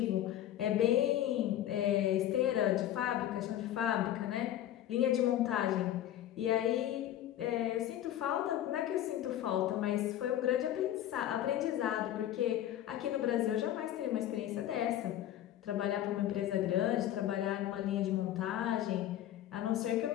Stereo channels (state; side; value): quieter; right; 12.2 dB